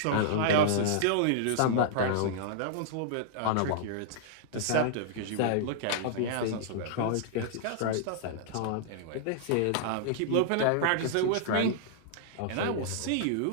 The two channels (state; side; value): different; both; correlation -0.01